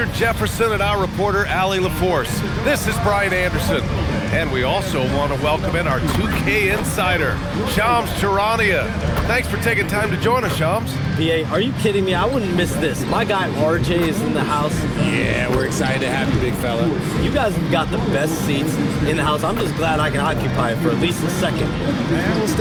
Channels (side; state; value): both; identical; correlation 1.00